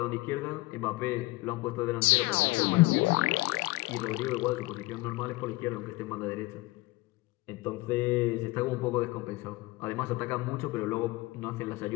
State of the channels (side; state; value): right; quieter; 21.7 dB